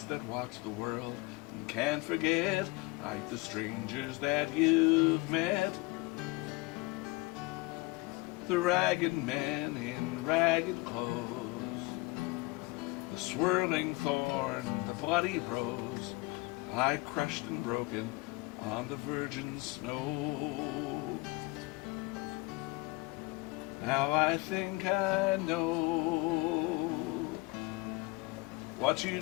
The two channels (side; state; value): right; quieter; 23.8 dB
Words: that watch the world and can't forget, like the strangers that you've met. The ragged men in ragged clothes, the swirling thorn, the bloody rose, lie crushed and broken on the virgin snow. Now I think I know what you